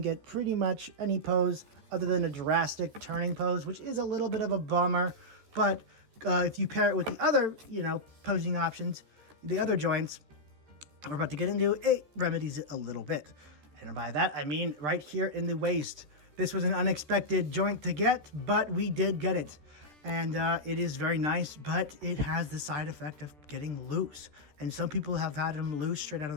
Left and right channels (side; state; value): left; late; 14 ms